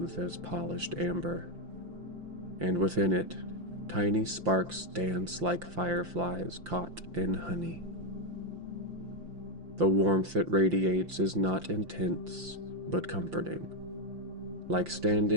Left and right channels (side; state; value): left; late; 5.8 ms